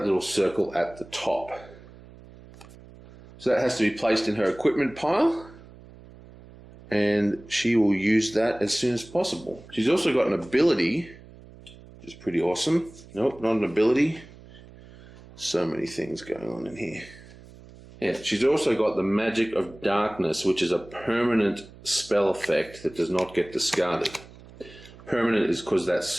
little circle at the top. So that has to be placed in her equipment pile, and she will use that as soon as possible. She's also got an ability, which is pretty awesome. Nope, not an ability. So many things going on in here. Yeah, she's also got the Magic of Darkness, which is a permanent spell effect that does not get discarded. Permanent is because that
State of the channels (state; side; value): noise; right; hum, 20 dB below the sound